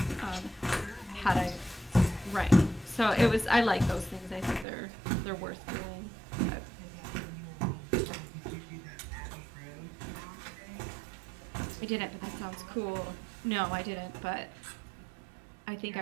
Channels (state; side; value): drops out; left; at 4.7 s